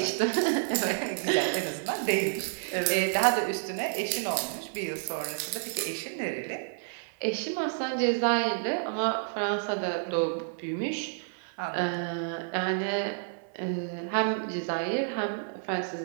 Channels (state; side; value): silent; left; 58 dB below the other